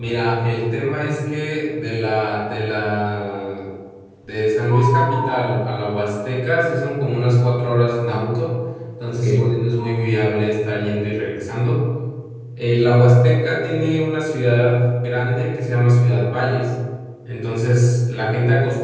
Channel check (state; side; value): identical; both; correlation 1.00